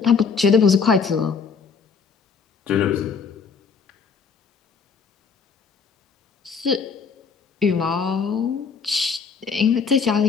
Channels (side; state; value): right; quieter; 5.7 dB